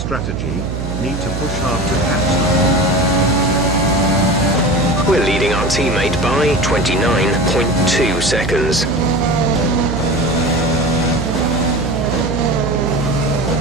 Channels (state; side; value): noise; right; hum, 5 dB below the sound